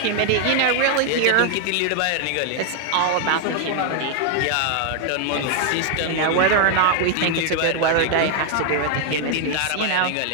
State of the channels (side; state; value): both; different; correlation 0.00